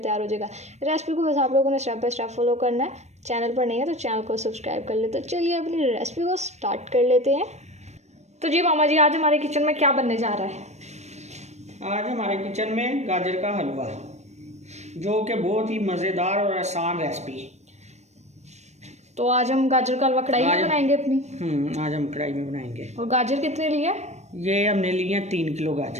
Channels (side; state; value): left; late; 0.32 ms